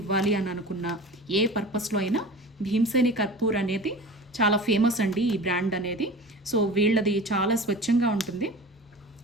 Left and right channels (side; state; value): both; normal; correlation 0.36